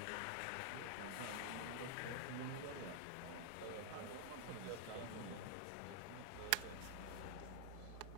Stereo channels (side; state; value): both; different; correlation -0.01